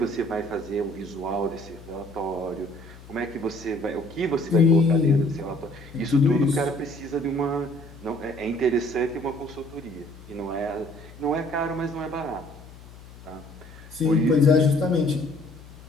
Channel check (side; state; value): left; noise; hum, 19 dB below the sound